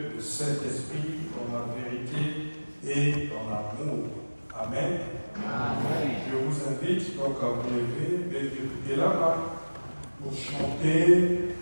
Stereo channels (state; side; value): inverted; both; correlation -1.00